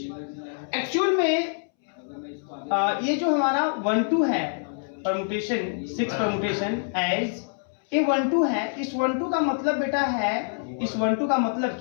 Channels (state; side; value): silent; right; 61 dB below the other